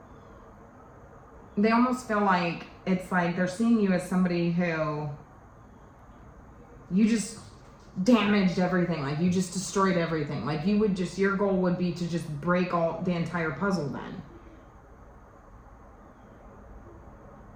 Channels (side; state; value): both; identical; correlation 1.00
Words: it's like they're seeing you as somebody who you just damaged everything. Like you just destroyed everything. Like you would just, your goal would be to just break the entire puzzle then.